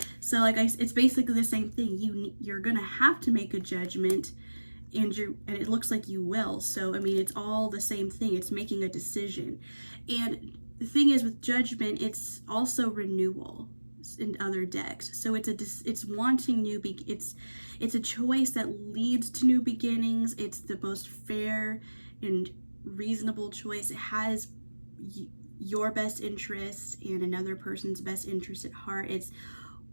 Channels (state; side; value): inverted; both; correlation -1.00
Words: So like it's basically the same thing. You're gonna have to make a judgment, and it looks like you will. So I mean, it's all the same thing. It's making a decision. And the thing is, with Judgment, it's also renewal in other decks. So it's wanting it's a choice that leads to new beginnings. It's the most fair and reasonable choice. It has your best interest and another person's best interest at heart. It's